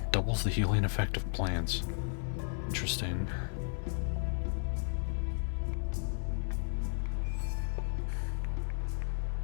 doubles the healing effect of plants. Interesting.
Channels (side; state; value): right; silent; digital silence